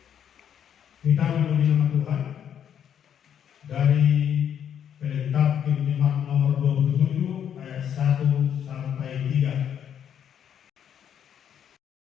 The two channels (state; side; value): quieter; right; 8.9 dB